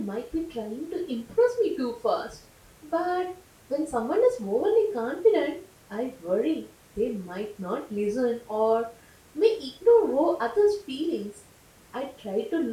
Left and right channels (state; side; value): identical; both; correlation 1.00